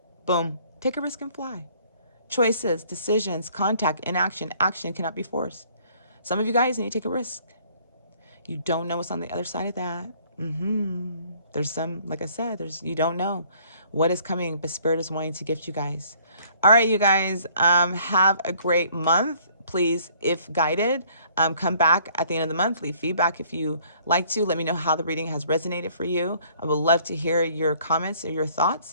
Boom. Take a risk and fly. Choices, decisions, contact, inaction, action cannot be forced. Some of you guys need to take a risk. You don't know what's on the other side of that. There's some, like I said, you don't know what is coming, but Spirit is wanting to gift you guys. All right, you guys, have a great month. Please, if guided, come back at the end of the month, leave feedback if you like to. Let me know how the reading has resonated for you. I would love to hear your comments or your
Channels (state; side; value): inverted; both; correlation -0.59